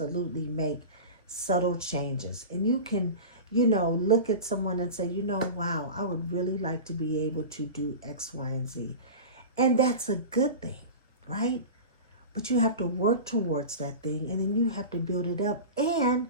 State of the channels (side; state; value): both; inverted; correlation -0.30